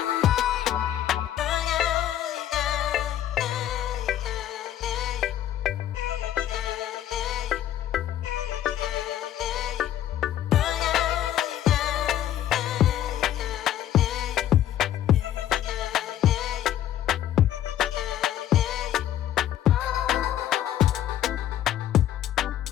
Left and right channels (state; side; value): quieter; right; 11.7 dB